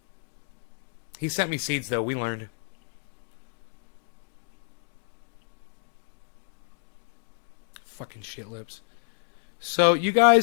He sent me seeds, though. We learned. Fucking shit lips. So you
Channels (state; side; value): silent; right; 58 dB below the other